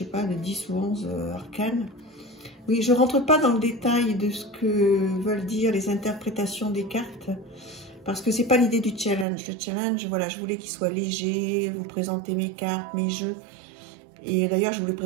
pas, de 10 ou 11 arcanes, oui, je ne rentre pas dans le détail de ce que veulent dire les interprétations des cartes, parce que c'est pas l'idée du challenge. Le challenge, voilà, je voulais qu'il soit léger, vous présenter mes cartes, mes jeux. Et d'ailleurs, je ne vous les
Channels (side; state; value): left; drops out; at 9.2 s